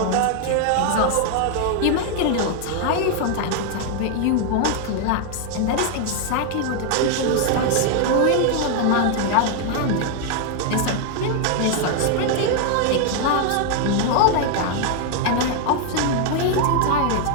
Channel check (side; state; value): both; different; correlation 0.00